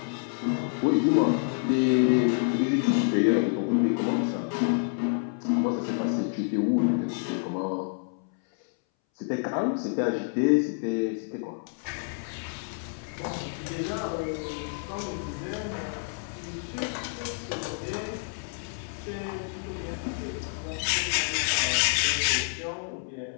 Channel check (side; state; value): right; silent; 59 dB below the other